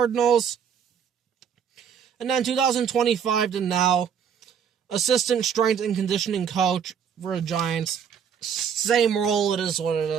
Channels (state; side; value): quieter; left; 7.7 dB